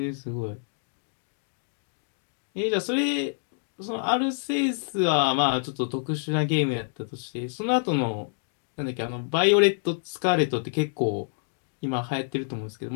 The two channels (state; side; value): silent; right; digital silence